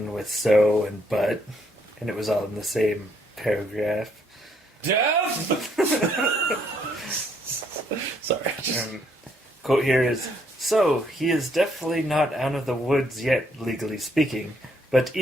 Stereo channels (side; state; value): both; normal; correlation 0.70